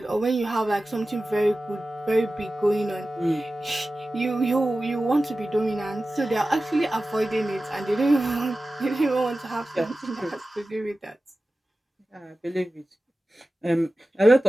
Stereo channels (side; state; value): both; normal; correlation 0.95